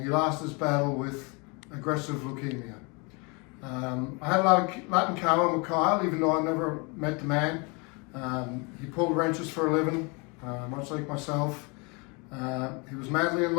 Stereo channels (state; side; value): quieter; right; 30.5 dB